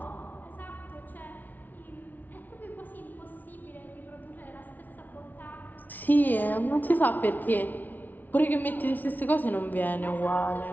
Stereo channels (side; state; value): right; late; 0.081 ms